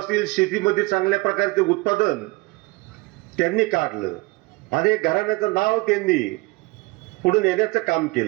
शेतीमध्ये चांगल्या प्रकारचे उत्पादन त्यांनी काढलं आणि घराण्याचं नाव त्यांनी पुढे नेण्याचं काम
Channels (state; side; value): quieter; left; 24.4 dB